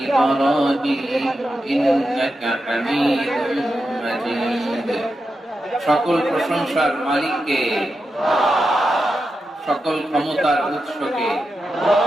إبراهيم إنك حميد مجيد সকল প্রশংসার মালিককে, সকল ক্ষমতার উৎসকে,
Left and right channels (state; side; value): normal; both; correlation 0.89